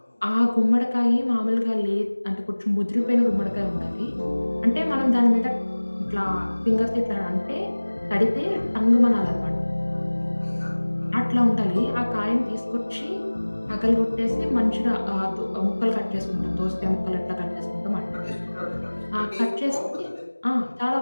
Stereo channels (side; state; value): both; inverted; correlation -1.00